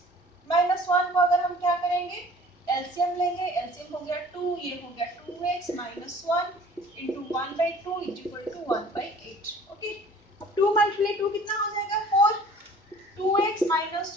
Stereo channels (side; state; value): both; normal; correlation 0.49